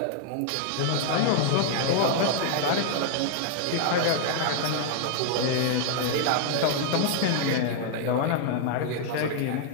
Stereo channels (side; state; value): both; different; correlation 0.00